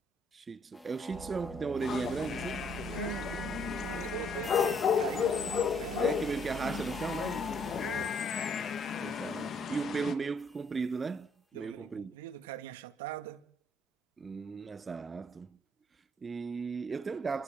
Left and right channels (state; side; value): normal; both; correlation 0.67